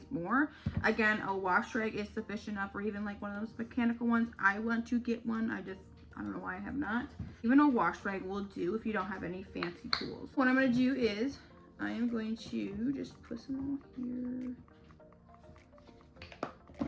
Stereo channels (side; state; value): both; identical; correlation 1.00